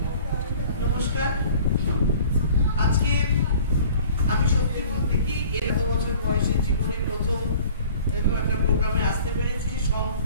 নমস্কার। আজকে আমি সত্যি বলতে কি 11 বছর বয়সে জীবনে প্রথম এরকম একটা প্রোগ্রামে আসতে পেরেছি।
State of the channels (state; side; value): inverted; both; correlation -0.48